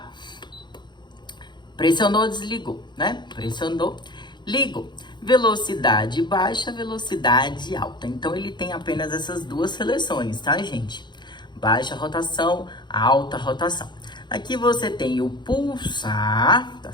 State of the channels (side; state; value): right; late; 0.22 ms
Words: Pressionou, desligou, né? Pressionou, ligou. Velocidade baixa, velocidade alta. Então, ele tem apenas essas duas seleções, tá, gente? Baixa rotação, alta rotação. Aqui você tem o pulsar, tá